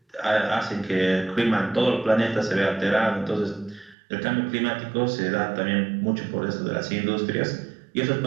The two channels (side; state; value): left; drops out; at 4.0 s